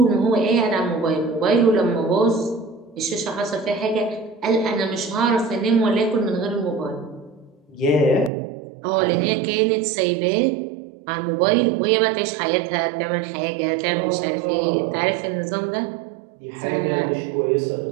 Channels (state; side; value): drops out; left; at 8.3 s